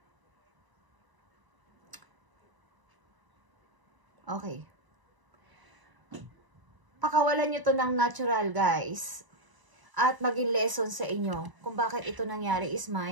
Okay. Pakawalan nyo to ng natural, guys. At maging lesson sa inyo kung bakit ito nangyari is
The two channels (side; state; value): left; late; 1.0 ms